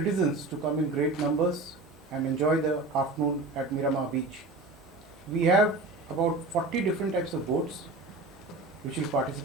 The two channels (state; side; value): quieter; left; 3.0 dB